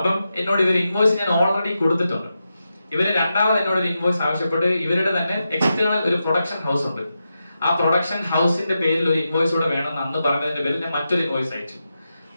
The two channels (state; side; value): inverted; both; correlation -0.88